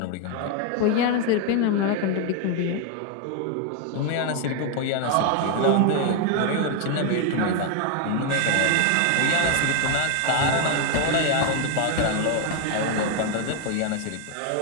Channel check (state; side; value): different; both; correlation 0.01